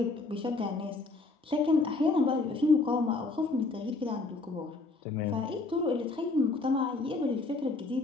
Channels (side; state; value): right; quieter; 3.5 dB